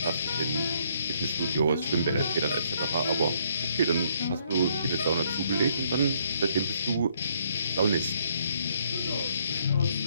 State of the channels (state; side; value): inverted; both; correlation -0.68